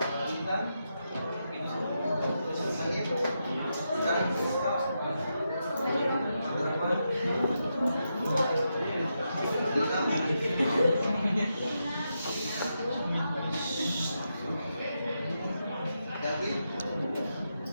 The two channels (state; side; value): inverted; both; correlation -0.85